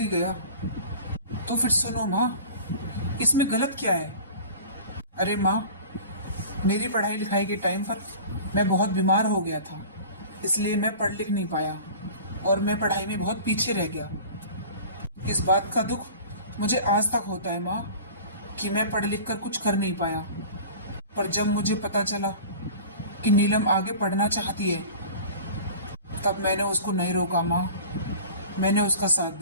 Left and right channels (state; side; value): inverted; both; correlation -0.40